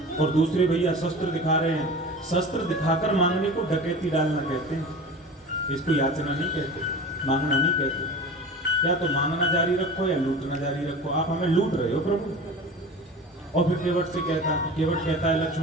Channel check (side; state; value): both; normal; correlation 0.35